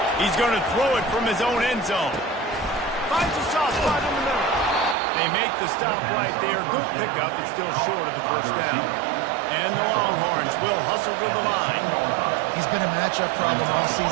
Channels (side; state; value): left; drops out; at 5.0 s